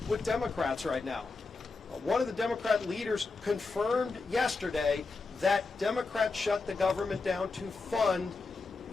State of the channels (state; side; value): quieter; right; 3.9 dB